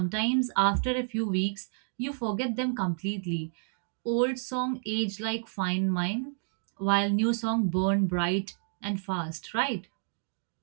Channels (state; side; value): silent; left; digital silence